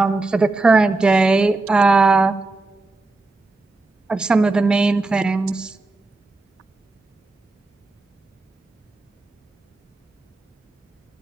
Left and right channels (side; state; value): left; quieter; 3.3 dB